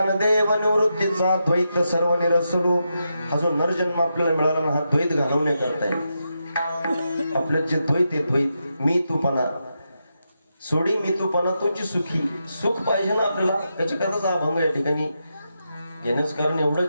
निवृत्तीचा द्वैत सर्व निरसलो. हा जो नरजन्म आपल्याला मिळाला ना हा द्वैत घालवण्याकरता आहे. आपलं जे द्वैत आहे द्वैत मी तूपणा सोडी मी तूपणा तुझी सुखी सुख पाहिजे ना आपल्याला त्याच्याकरताच हा अभंग या ठिकाणी घेण्याचं कारण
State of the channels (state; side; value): inverted; both; correlation -0.85